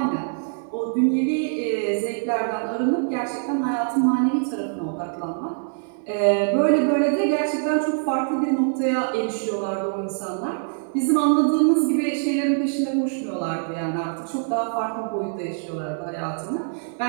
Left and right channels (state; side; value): silent; left; digital silence